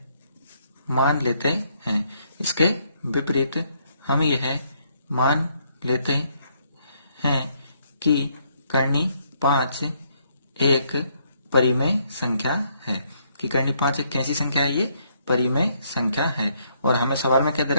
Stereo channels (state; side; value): inverted; both; correlation -0.71